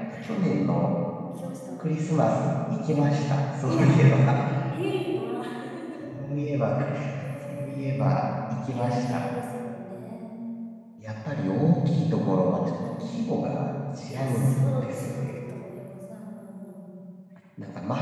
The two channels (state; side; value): identical; both; correlation 1.00